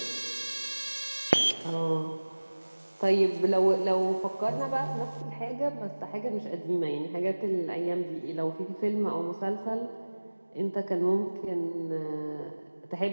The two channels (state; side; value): inverted; both; correlation -1.00